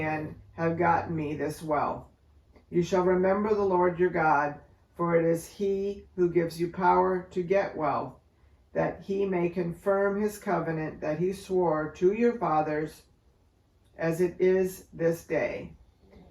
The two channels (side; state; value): both; identical; correlation 1.00